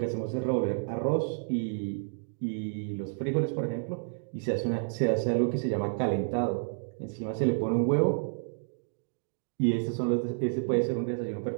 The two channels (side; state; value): left; silent; digital silence